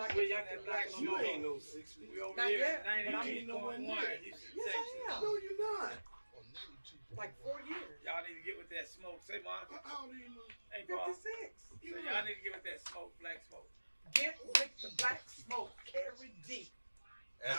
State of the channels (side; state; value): both; inverted; correlation -1.00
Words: William, it, that black like You smoke. ain't no 60. We over Not here yet, at but I'm 92.1. You should Yes, text I us. am. No, you're not. Like 4 years. Y'all need to get with that smoke. Say, Monica. How old are you? Hey, Paul. 56. So y'all need to get with that smoke, black smoke. Get with the black smoke. Kerry D. That's